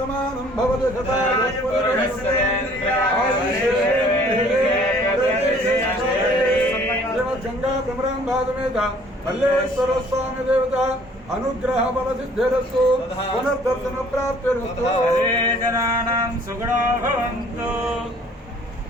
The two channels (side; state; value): both; normal; correlation 0.56